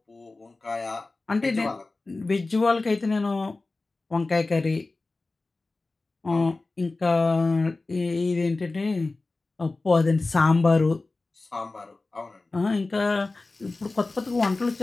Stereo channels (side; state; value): right; quieter; 3.4 dB